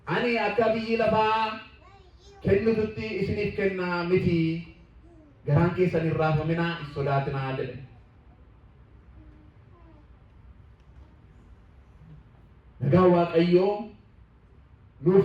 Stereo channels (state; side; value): identical; both; correlation 1.00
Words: Ani akka biyyi lafaa kennitutti isiniif kennaa miti. Garaan keessan hin raafaminaa, hin sodaatinaa jedhe. Nagaa Waaqayyoo